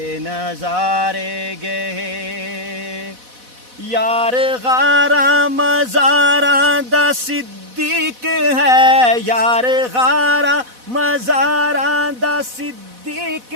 نظارے گئے۔ یار غاراں مزاراں دا صدیق ہے، یار غاراں مزاراں دا صدیق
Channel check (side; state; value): left; late; 4.1 ms